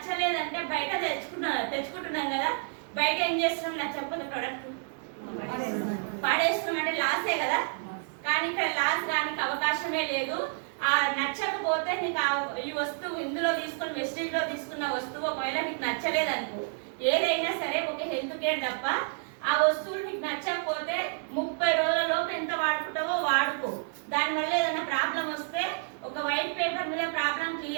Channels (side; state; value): left; silent; 58 dB below the other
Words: బయట తెచ్చుకుంటున్నాం కదా, బయట ఏం చేస్తున్నాం నచ్చకపోతే ప్రోడక్ట్ పాడేస్తున్నాం అంటే లాసే కదా. కానీ ఇక్కడ లాస్ రానికి అవకాశమే లేదు. ఆ నచ్చకపోతే నీకు ఈ వస్తువు ఇందులో తీసుకుని వెస్టేజ్ లో తీసుకున్న వస్తువు ఒకవేళ నీకు నచ్చలేదనుకో, ఏదైనా సరే ఒక హెల్త్ కేర్ తప్ప ఆ వస్తువులు నీకు నచ్చకపోతే 30 రోజులలోపు ఎంత వాడుకుంటావో వాడుకో. దానివల్ల ఏదైనా ప్రాబ్లం వస్తే ఒక వైట్ పేపర్ మీద ప్రాబ్లం